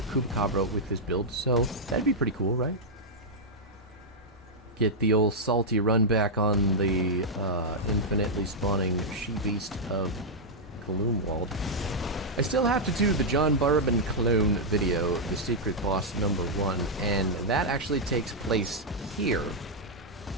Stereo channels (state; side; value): normal; both; correlation -0.05